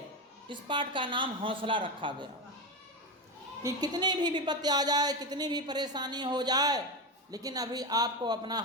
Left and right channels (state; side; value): normal; both; correlation 0.16